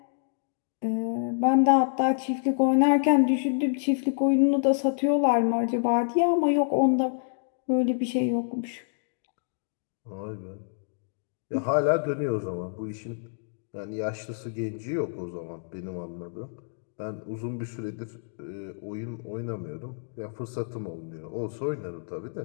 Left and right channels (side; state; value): right; silent; digital silence